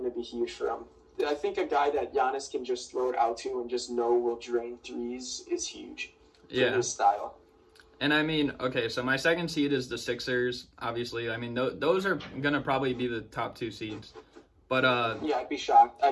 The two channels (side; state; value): both; identical; correlation 1.00